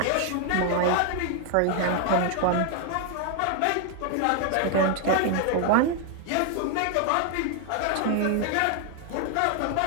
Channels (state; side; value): different; both; correlation 0.01